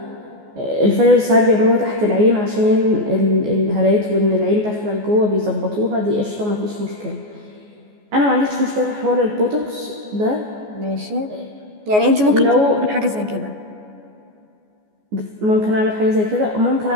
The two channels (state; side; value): late; left; 14 ms